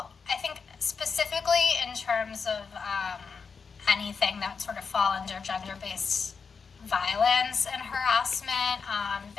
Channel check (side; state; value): right; quieter; 5.5 dB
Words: I think specifically in terms of anything that sort of fall under gender-based violence and harassment,